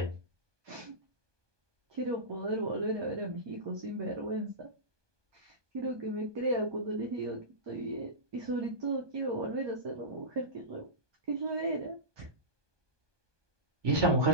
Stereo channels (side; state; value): left; late; 1.2 ms